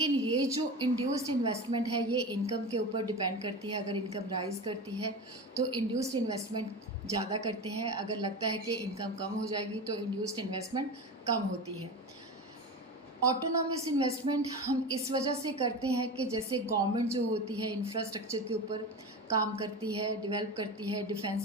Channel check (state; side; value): normal; both; correlation 0.27